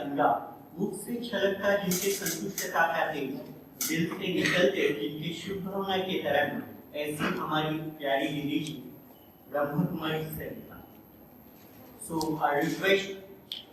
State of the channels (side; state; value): both; identical; correlation 1.00